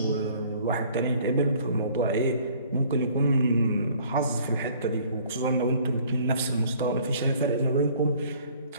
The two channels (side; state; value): both; inverted; correlation -0.55